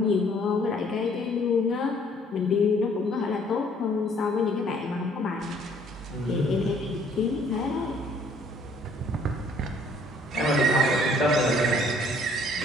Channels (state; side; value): normal; both; correlation 0.60